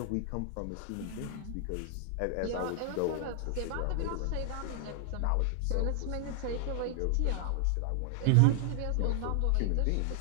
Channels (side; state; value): both; different; correlation 0.00